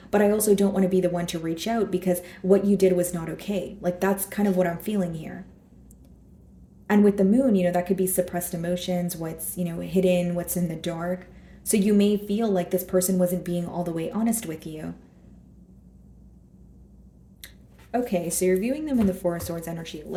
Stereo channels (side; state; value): both; identical; correlation 1.00